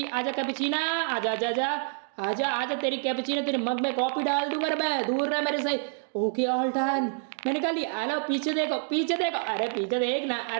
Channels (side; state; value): left; silent; 60 dB below the other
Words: आजा कैपुचिना, आजा आजा आजा आजा आजा, तेरी कैपुचिना तेरे मग में कॉफी डाल दूंगा मैं, दूर रह मेरे से। ओके ऑल डन, मैंने कहा ली। हेलो पीछे देखो, पीछे देखो, अरे पीछे देख ना,